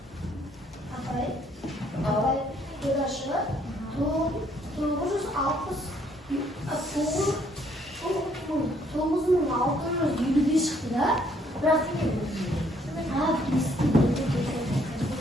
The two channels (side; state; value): both; normal; correlation 0.66